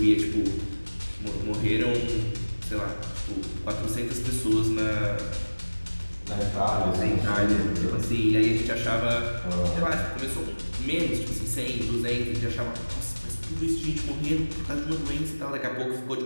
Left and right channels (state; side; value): inverted; both; correlation -1.00